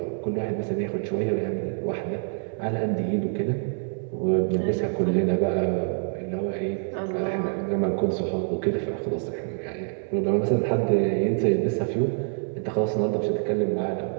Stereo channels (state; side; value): silent; left; digital silence